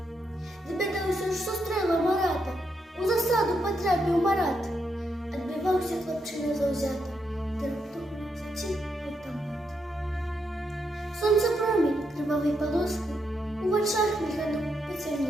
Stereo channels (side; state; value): both; normal; correlation 0.81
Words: Довідався, що стрела Марата, у засаду потрапив Марат. Отбивався хлопчина завзято, та раптом затік автомат. Сонце промінь кривавий полоски у очах мільганом